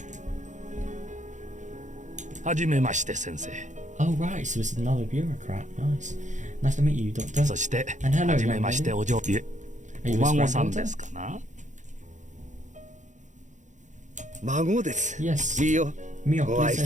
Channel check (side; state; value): left; late; 0.35 ms